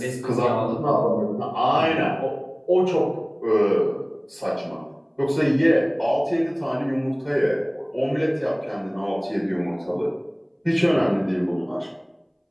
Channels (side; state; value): both; identical; correlation 1.00